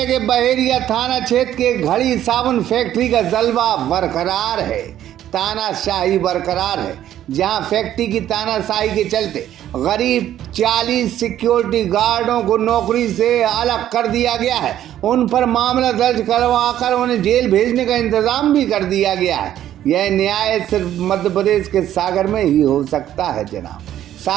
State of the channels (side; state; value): left; quieter; 11.8 dB